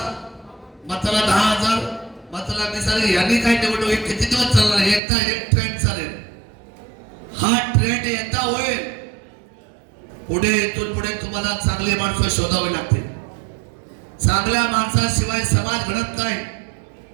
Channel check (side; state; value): left; drops out; at 5.0 s